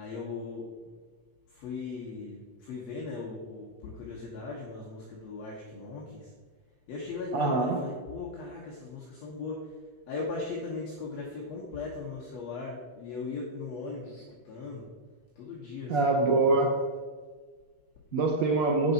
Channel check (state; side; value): late; right; 8.3 ms